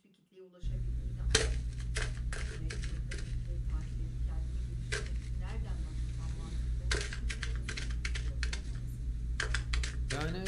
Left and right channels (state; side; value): identical; both; correlation 1.00